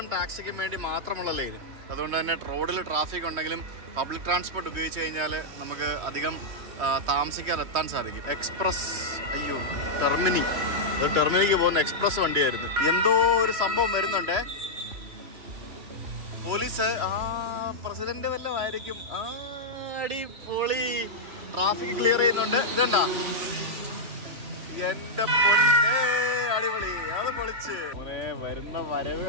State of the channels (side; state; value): left; late; 3.0 ms